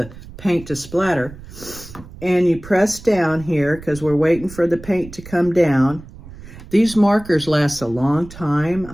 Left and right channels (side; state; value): right; noise; rumble, 17 dB below the sound